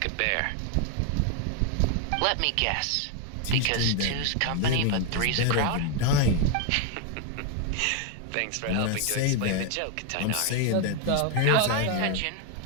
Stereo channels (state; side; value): different; both; correlation 0.01